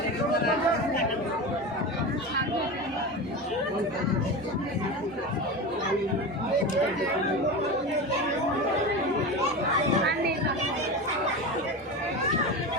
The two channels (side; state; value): both; normal; correlation 0.25